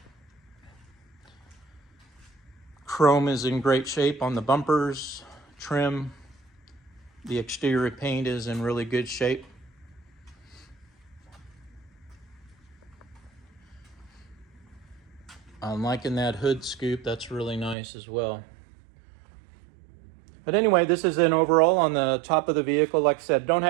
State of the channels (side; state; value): left; drops out; at 17.8 s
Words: Chrome is in great shape on the bumpers, trim. The exterior paint is in really good shape. I'm liking that hood scoop. That's really nice as well. But anyway, this is an overall on the top of the vehicle. Like I said, don't